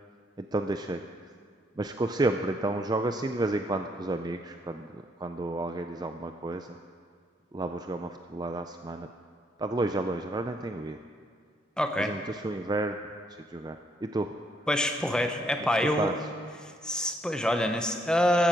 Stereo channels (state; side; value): normal; both; correlation 0.71